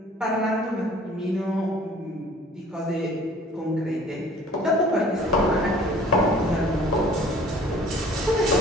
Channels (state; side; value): normal; both; correlation 0.51